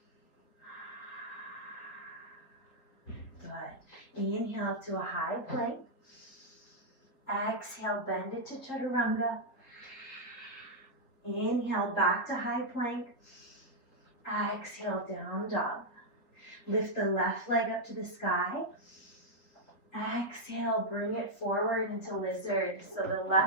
Good. Inhale to a high plank. Exhale, bend it to chaturanga. Inhale, back to high plank. Exhale, down dog. Lift the left leg up to the sky. Exhale, bring it forward into lizard. So the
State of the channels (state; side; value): late; right; 3.9 ms